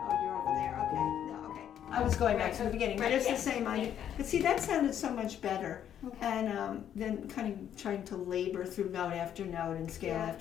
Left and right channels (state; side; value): quieter; right; 9.8 dB